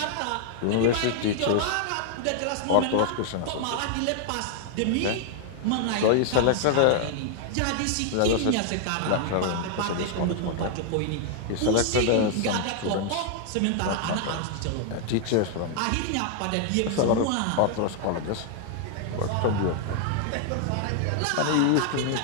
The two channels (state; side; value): different; both; correlation 0.00